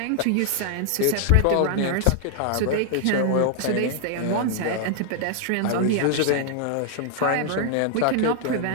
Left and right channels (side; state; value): both; different; correlation 0.00